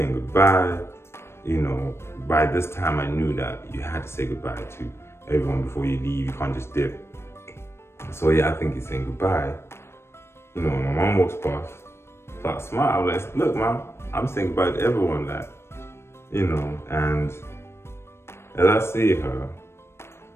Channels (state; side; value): late; right; 0.12 ms